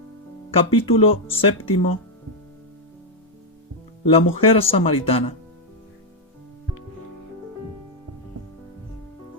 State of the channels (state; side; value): normal; both; correlation 0.00